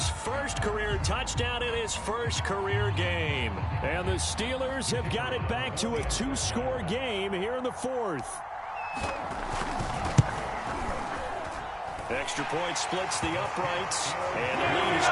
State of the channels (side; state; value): both; identical; correlation 1.00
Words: first career touchdown in his first career game. And the Steelers have got it back to a 2-score game here in the 4th. Extra point splits the uprights, and the lead is